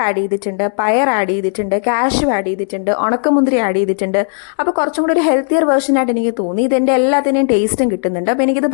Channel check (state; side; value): silent; right; digital silence